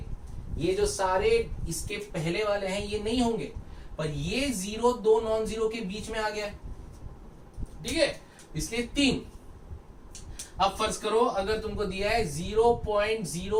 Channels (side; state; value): both; identical; correlation 1.00